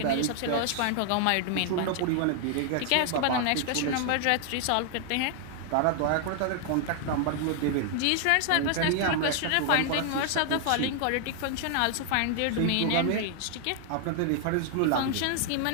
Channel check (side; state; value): both; different; correlation 0.00